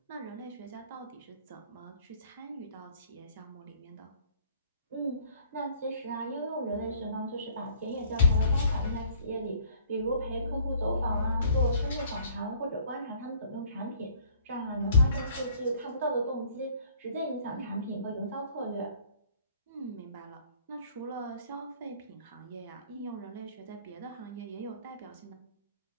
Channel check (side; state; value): both; inverted; correlation -0.57